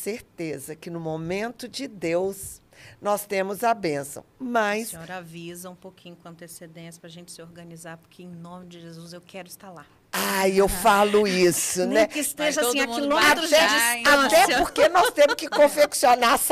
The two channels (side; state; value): both; identical; correlation 1.00